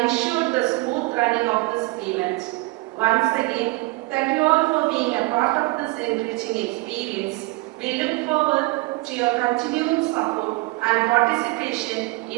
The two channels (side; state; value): left; quieter; 23.3 dB